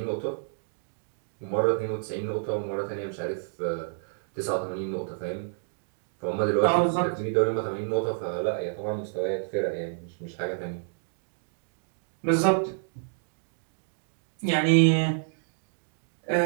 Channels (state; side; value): silent; left; digital silence